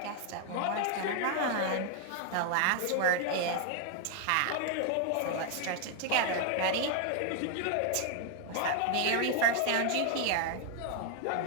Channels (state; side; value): different; both; correlation 0.01